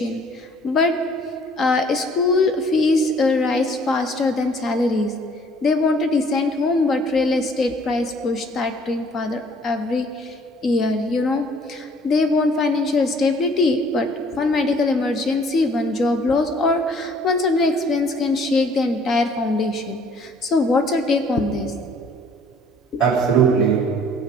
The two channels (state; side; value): normal; both; correlation 0.58